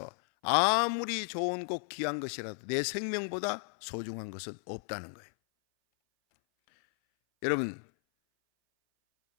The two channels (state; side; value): silent; right; 56 dB below the other